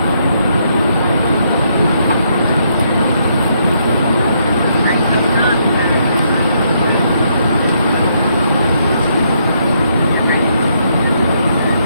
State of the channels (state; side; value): inverted; both; correlation -0.74